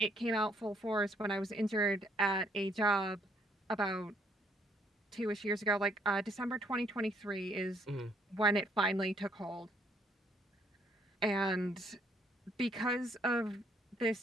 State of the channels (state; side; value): normal; both; correlation 0.67